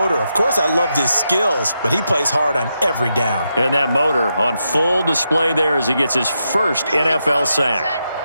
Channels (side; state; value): both; inverted; correlation -0.84